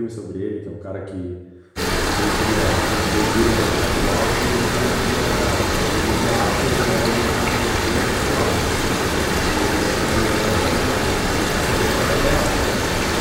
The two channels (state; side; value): identical; both; correlation 1.00